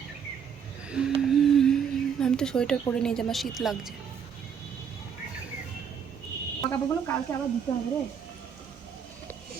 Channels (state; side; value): quieter; left; 7.4 dB